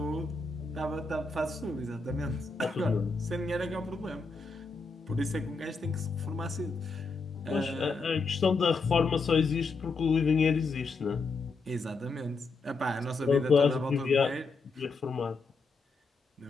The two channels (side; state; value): right; quieter; 4.0 dB